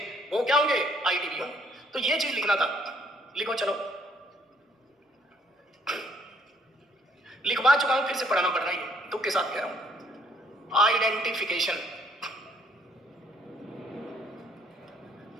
वो क्या होंगे? आईटीवी होंगे। तो ये चीज लिखना था, लिखो चलो। लिखवा चुका हूं, फिर से पढ़ाना पड़ रहा है, दुख के साथ कह रहा हूं।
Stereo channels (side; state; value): both; normal; correlation 0.65